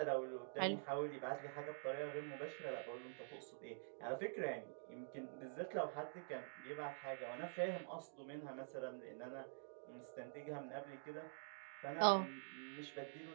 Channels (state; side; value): silent; left; digital silence